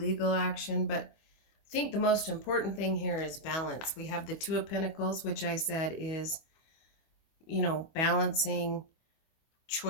action, but I think the most important thing here is balance. We have the Two of Pentacles, which I said is, balancing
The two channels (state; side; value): late; right; 25 ms